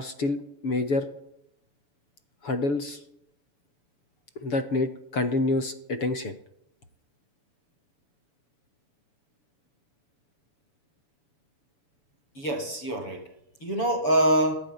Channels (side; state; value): right; late; 7.0 ms